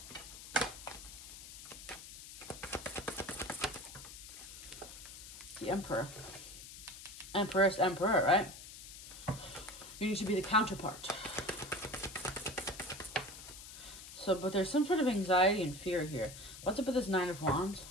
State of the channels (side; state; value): left; noise; hiss, 13 dB below the sound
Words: The Emperor. Empress, Emperor, right? You need to be the counterpart. So, but there's some sort of anxiety and fear here. What's up with this 9 of Wands?